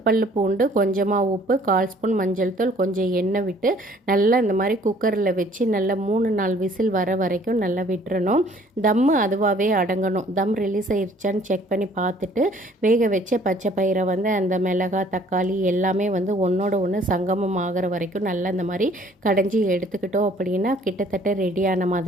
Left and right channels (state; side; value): normal; both; correlation 0.57